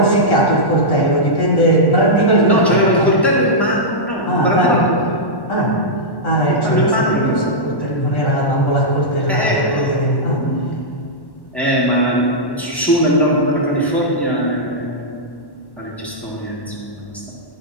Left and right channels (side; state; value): right; late; 1.1 ms